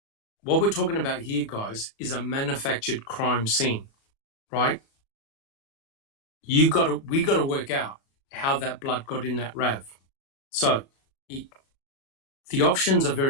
What we're talking about here, guys, is a manufactured crime scene, right? We got to work out how that blood got in that RAV. So the options are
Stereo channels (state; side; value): late; right; 37 ms